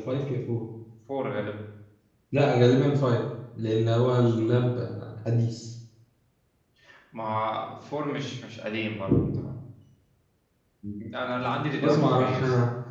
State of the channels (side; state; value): both; identical; correlation 1.00